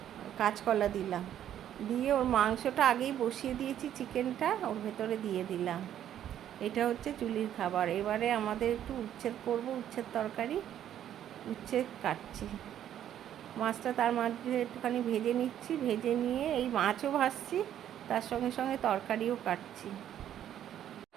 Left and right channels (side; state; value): left; quieter; 10.8 dB